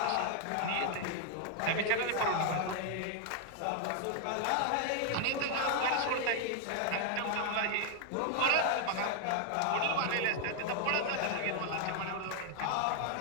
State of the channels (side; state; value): both; different; correlation 0.00